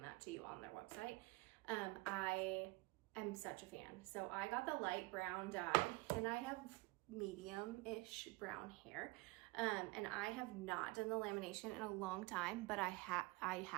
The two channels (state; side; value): quieter; left; 23.3 dB